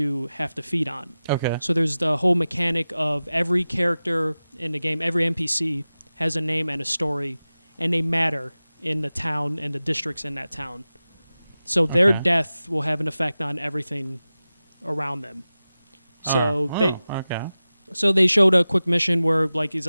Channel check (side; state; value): both; inverted; correlation -0.95